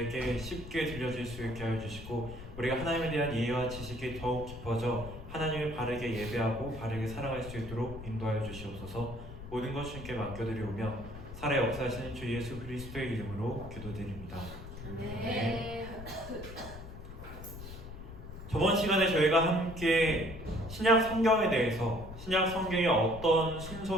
쉽게 들려질 수 있게 하여 주시고 우리가 하나님에 대한 이해와 지식이 더욱 깊어져 하나님을 바르게 예배하고 바르게 살아갈 수 있도록 인도하여 주시옵소서. 모든 것 주님께 맡겨드리오며 살아 역사하시는 주 예수 그리스도의 이름으로 기도드립니다. 네. 저번 시간에 저희가 함께 신약 성경에 대해서 신약 성경이 어떤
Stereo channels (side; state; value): left; noise; rumble, 12 dB below the sound